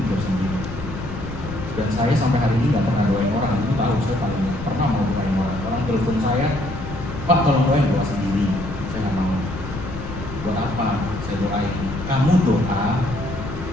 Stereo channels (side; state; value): left; noise; rumble, 10 dB below the sound